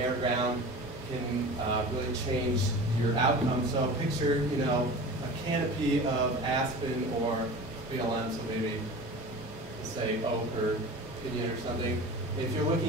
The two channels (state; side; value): normal; both; correlation 0.35